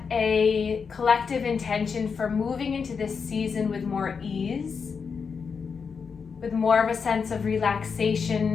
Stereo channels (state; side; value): quieter; right; 5.8 dB